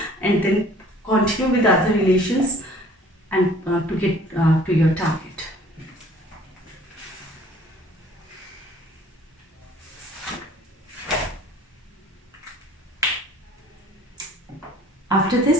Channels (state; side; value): normal; both; correlation 0.52